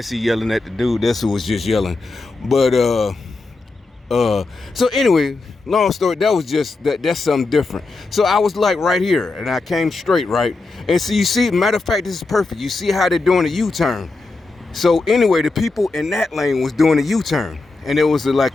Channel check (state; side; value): quieter; right; 3.5 dB